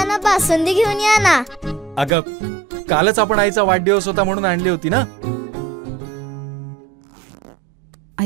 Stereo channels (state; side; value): drops out; left; at 2.1 s